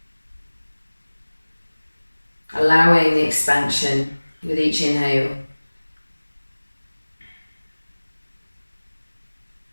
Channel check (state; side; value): inverted; both; correlation -1.00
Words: Allowing the expansion with each inhale.